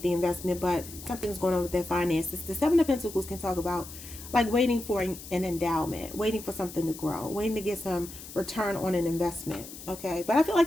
the investment, but something's going on with their finances. The Seven of Pentacles can talk about like waiting for an endowment, waiting for something to grow, waiting to get some return on an investment. Okay, but I feel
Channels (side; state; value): left; noise; hiss, 14 dB below the sound